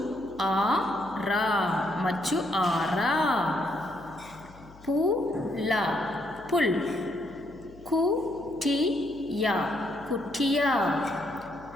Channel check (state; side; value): noise; left; hum, 22 dB below the sound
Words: machu-ara. Pu-la, pul. Ku-ti-ya, kutiya.